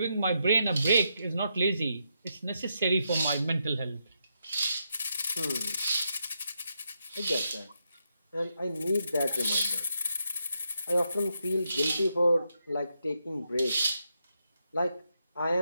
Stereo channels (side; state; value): both; inverted; correlation -0.81